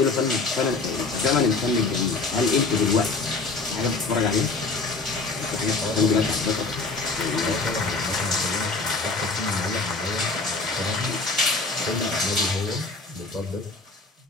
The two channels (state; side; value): quieter; right; 3.8 dB